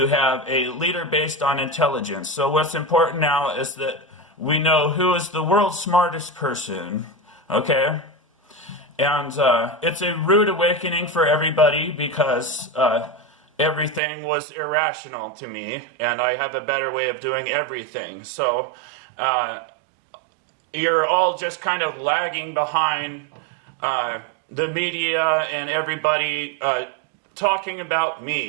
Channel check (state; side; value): drops out; left; at 14.0 s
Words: have a leader based on intelligence. So what's important now is that we know who is the world's smartest person, okay? And it's a rude awakening for everybody, because everything was irrational to me, and I have a better way of doing everything. So you're all just kind of lagging behind the media and everybody talking about